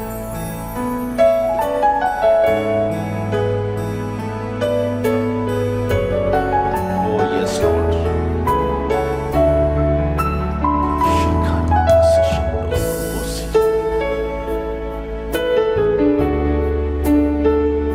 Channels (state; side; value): identical; both; correlation 1.00